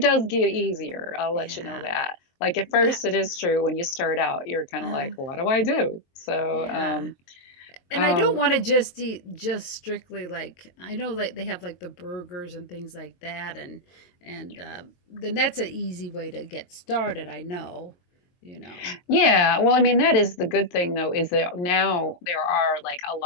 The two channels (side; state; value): right; late; 22 ms